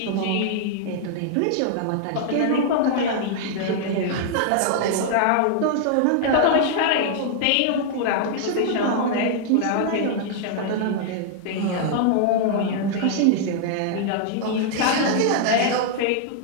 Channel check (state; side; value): different; both; correlation -0.01